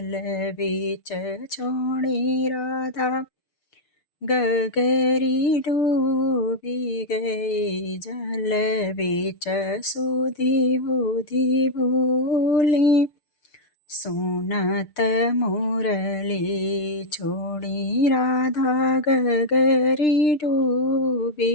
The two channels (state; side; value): late; right; 6.6 ms